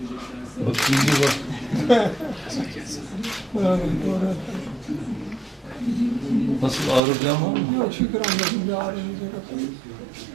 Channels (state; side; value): drops out; left; at 7.0 s